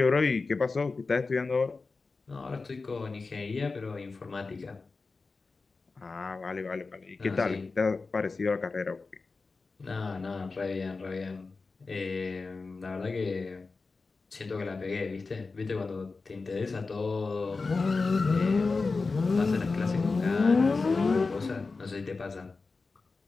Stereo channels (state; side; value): quieter; right; 4.1 dB